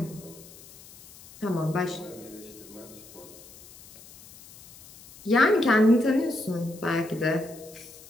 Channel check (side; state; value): left; noise; hiss, 20 dB below the sound